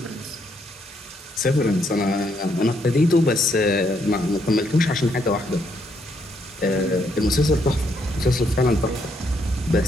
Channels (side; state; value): both; normal; correlation 0.73